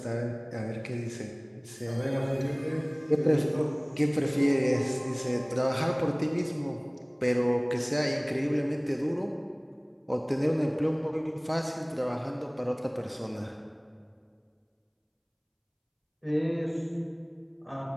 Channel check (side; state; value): both; identical; correlation 1.00